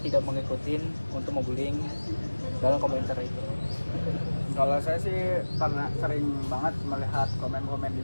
mengikuti untuk membullying dalam komentar itu. Kalau saya sih karena sering banget melihat komen-komen di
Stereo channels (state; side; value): inverted; both; correlation -1.00